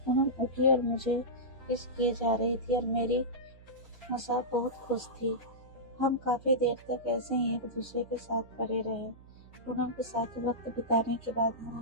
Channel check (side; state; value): right; noise; hum, 22 dB below the sound